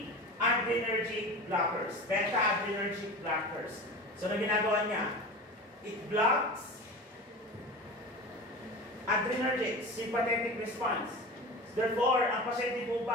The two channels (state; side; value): normal; both; correlation 0.31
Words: adrenergic blockers. Beta adrenergic blockers. So na ginagawa niya? It blocks adrenergic, sympathetic response. Therefore, ang pasyente po